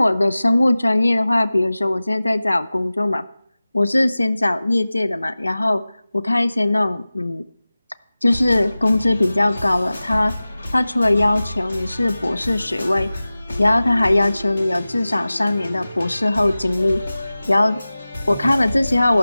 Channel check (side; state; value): both; inverted; correlation -0.97